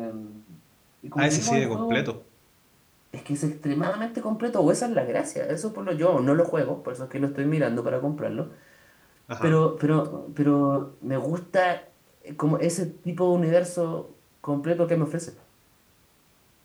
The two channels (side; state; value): both; identical; correlation 1.00